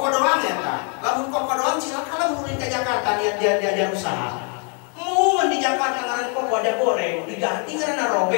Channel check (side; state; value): right; quieter; 39.7 dB